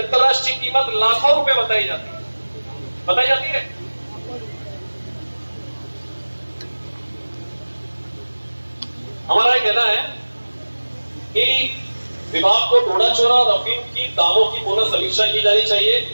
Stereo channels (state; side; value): inverted; both; correlation -1.00